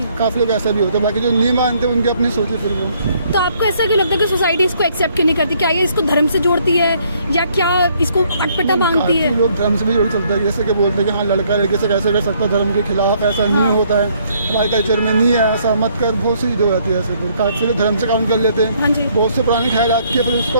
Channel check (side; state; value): both; inverted; correlation -0.67